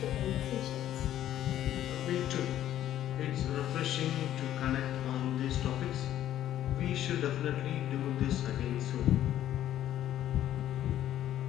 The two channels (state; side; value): quieter; right; 12.1 dB